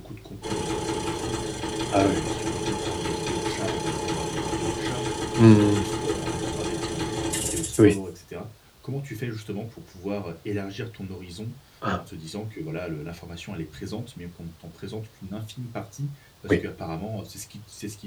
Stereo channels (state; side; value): identical; both; correlation 1.00